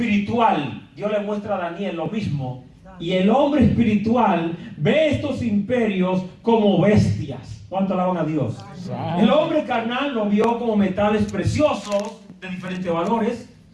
Dios le muestra a Daniel lo mismo. Y el hombre espiritual ve estos imperios como bestias. ¿Cuánto alaban a Dios? El hombre carnal lo vio como metales preciosos de diferentes valores.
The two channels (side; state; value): both; identical; correlation 1.00